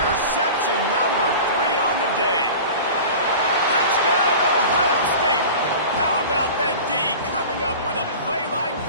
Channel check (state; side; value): inverted; both; correlation -0.36